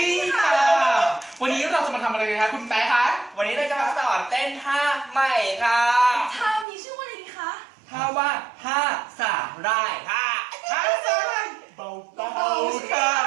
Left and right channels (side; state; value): left; drops out; at 6.7 s